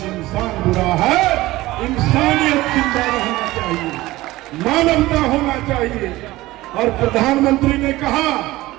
इंसान बुरा है। इंसानियत जिंदा रहना चाहिए, मानवता होना चाहिए। और प्रधानमंत्री ने कहा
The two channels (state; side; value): quieter; left; 18.1 dB